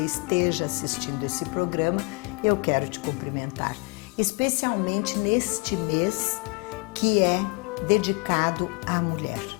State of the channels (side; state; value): right; quieter; 31.5 dB